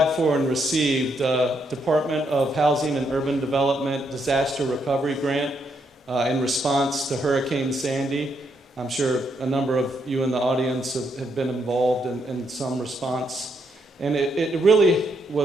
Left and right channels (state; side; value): normal; both; correlation 0.77